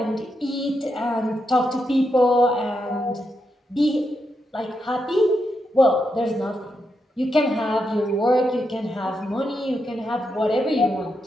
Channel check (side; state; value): both; normal; correlation 0.84